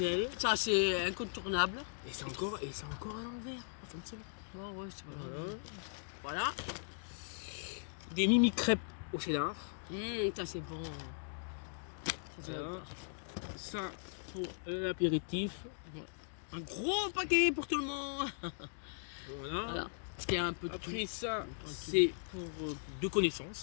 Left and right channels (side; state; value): right; silent; digital silence